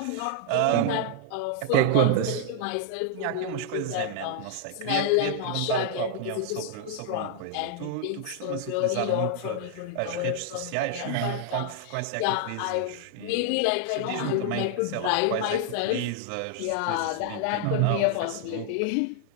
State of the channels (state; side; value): different; both; correlation 0.00